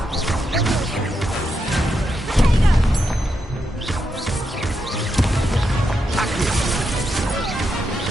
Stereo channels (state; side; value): normal; both; correlation 0.84